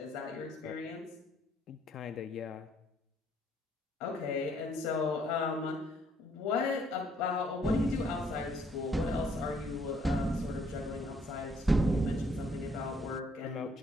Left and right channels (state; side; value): normal; both; correlation 0.66